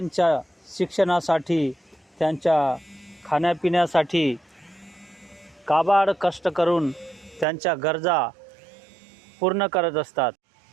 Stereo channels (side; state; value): left; drops out; at 7.5 s